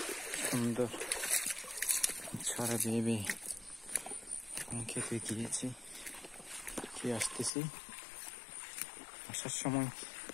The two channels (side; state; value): right; drops out; at 7.5 s